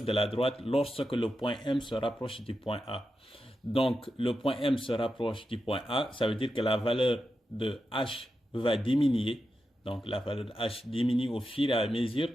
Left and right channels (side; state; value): both; normal; correlation 0.89